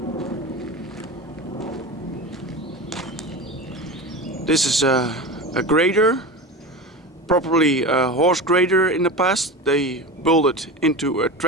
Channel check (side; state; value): both; normal; correlation 0.27